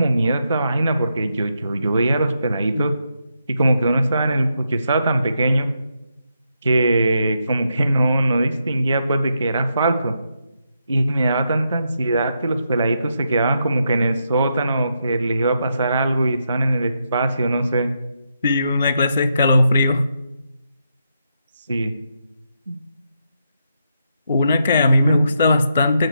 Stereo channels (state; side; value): inverted; both; correlation -0.81